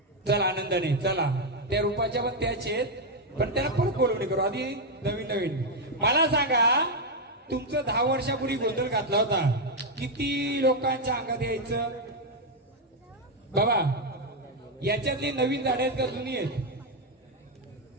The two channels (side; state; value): both; normal; correlation 0.02